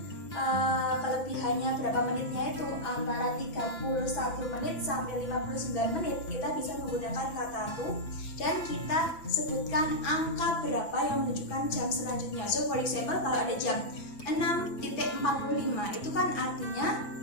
kelebihannya berapa menitnya itu antara 31 menit sampai 59 menit, kita bisa menggunakan kata to dan kita sebutkan angka berapa yang menunjukkan jam selanjutnya. So for example, kalau ada jam 6.45 itu kan artinya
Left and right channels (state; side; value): late; right; 6.0 ms